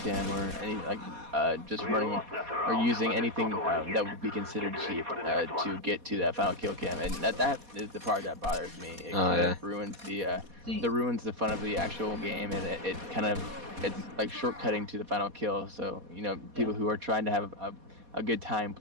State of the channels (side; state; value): left; late; 4.2 ms